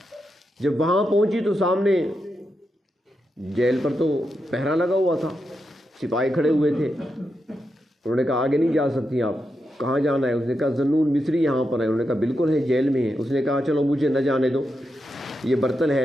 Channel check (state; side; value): normal; both; correlation 0.86